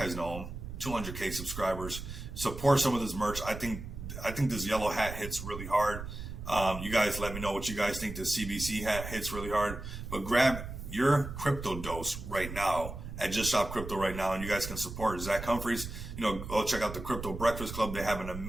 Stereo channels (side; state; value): right; noise; rumble, 9 dB below the sound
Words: know him, 200K subscribers. Support some of this merch. I think this yellow hat hits really hard. You guys let me know what you guys think. The CBC hat hits really hard. But grab your crypto dose right now at Just Shop Crypto right now, and you guys can support Zach Humphreys. Go check out the Crypto Breakfast Club. They have an